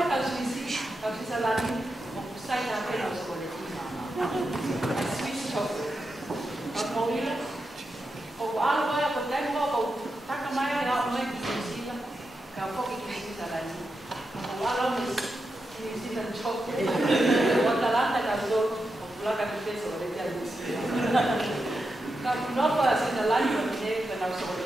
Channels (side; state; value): both; normal; correlation 0.88